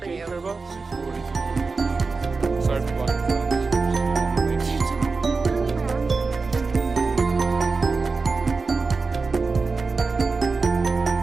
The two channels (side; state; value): left; quieter; 4.3 dB